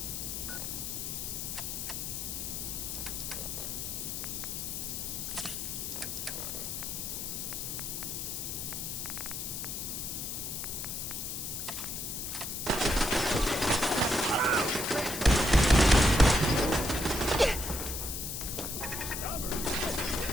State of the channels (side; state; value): left; noise; hiss, 4 dB below the sound